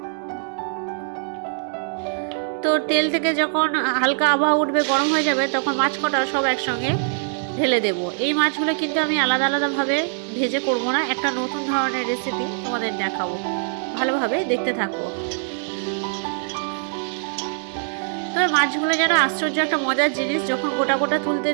তো তেল থেকে যখন হালকা আবহাওয়া উঠবে, গরম হয়ে যাবে, তখন মাছ কটা সব একসঙ্গে ঢেলে দেব। এই মাছগুলো কিন্তু আমি আলাদা আলাদাভাবে ভেজে করব না, একটা নতুন ধরনের রেসিপি তোমাদের দেখাবো, ভালোভাবে দেখতে থাকো। তবে মাছগুলো যেন আশ্চর্য একটা মজার জিনিস, যখন গোটা গোটা তুলতে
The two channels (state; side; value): silent; left; digital silence